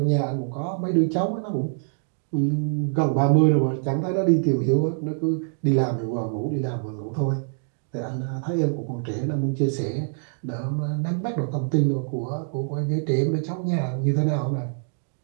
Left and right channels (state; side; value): silent; left; digital silence